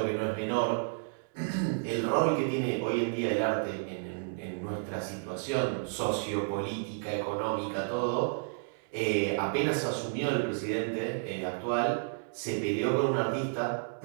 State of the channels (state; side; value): silent; left; digital silence